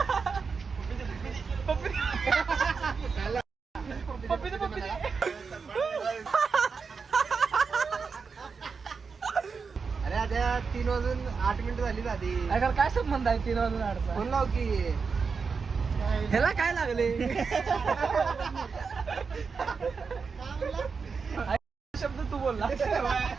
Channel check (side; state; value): left; quieter; 5.2 dB